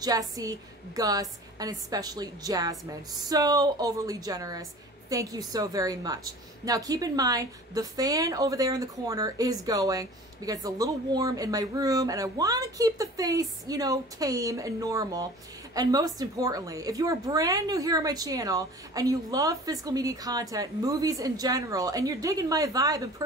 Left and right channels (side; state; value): both; normal; correlation 0.43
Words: Gus, and especially Jasmine. So overly generous. Thank you so very much. Now keep in mind, the fan over there in the corner is going because it's a little warm in my room and I want to keep the face, you know, tame and normal. And most importantly, if you are brand new here on my channel and you love physical media content, movies in general, and you're digging my vibe and